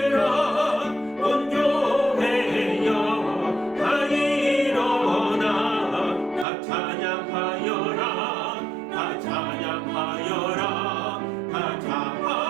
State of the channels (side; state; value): left; drops out; at 6.5 s